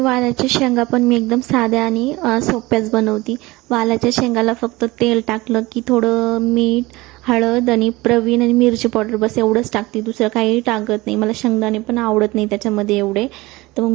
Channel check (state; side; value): quieter; left; 20.9 dB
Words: शेंगा पण मी एकदम साध्या आणि सोप्याच बनवते. वालाच्या शेंगाला फक्त तेल टाकलं की थोडं मीठ, हळद आणि प्रवीण आणि मिरची पावडर, बस एवढंच टाकते, दुसरं काही टाकत नाही. मला शेंगदाणे पण आवडत नाही त्याच्यामध्ये एवढे, तर मग